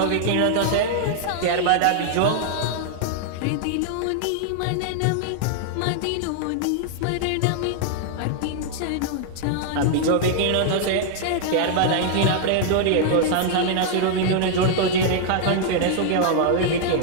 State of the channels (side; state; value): both; different; correlation 0.00